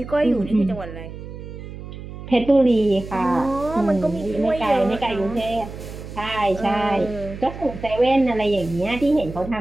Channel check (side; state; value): right; noise; hum, 12 dB below the sound